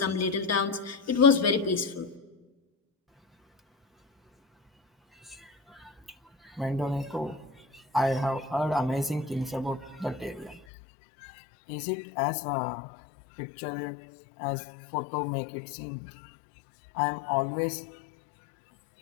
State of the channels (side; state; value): right; drops out; at 10.6 s